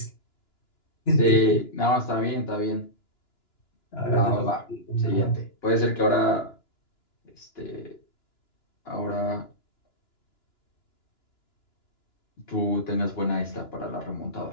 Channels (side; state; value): right; late; 2.9 ms